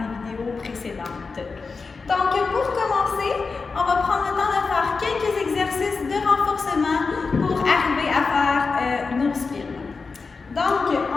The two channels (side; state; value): right; quieter; 4.5 dB